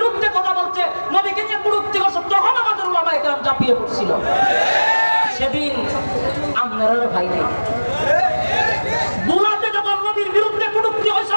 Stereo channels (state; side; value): inverted; both; correlation -1.00